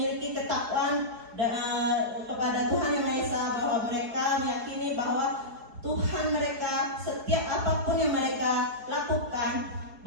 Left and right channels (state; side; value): late; left; 4.7 ms